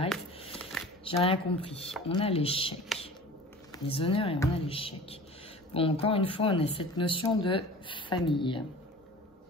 J'ai rien compris. On a l'échec. Les honneurs et on a l'échec. Bon, encore une fois, on a cette notion de famille.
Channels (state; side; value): normal; both; correlation 0.41